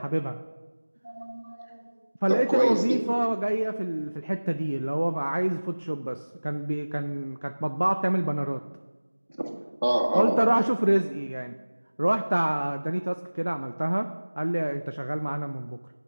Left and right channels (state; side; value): inverted; both; correlation -1.00